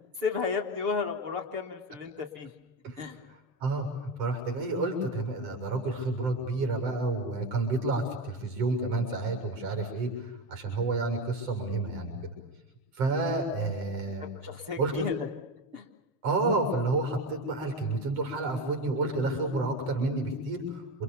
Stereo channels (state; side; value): late; left; 7.7 ms